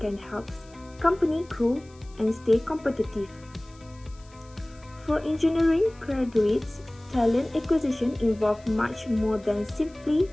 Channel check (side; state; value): left; noise; hiss, 28 dB below the sound